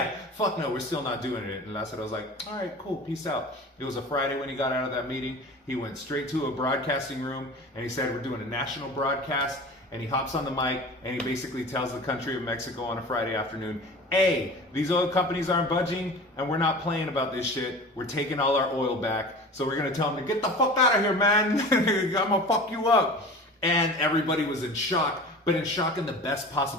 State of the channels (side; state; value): both; normal; correlation 0.37